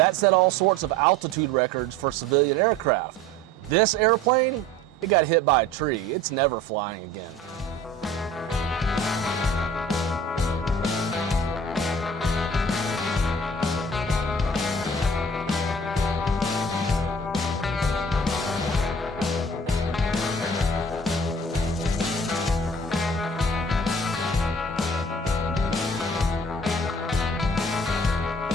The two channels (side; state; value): both; normal; correlation 0.46